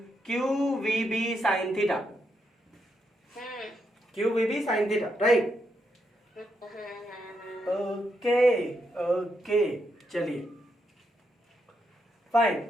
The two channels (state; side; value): normal; both; correlation 0.81